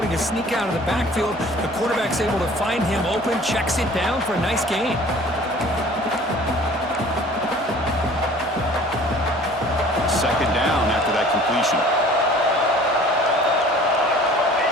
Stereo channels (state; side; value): normal; both; correlation 0.49